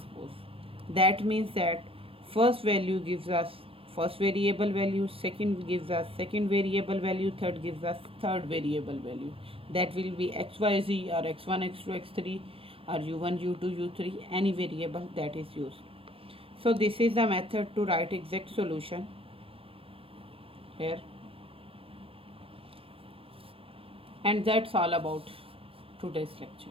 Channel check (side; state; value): left; late; 0.27 ms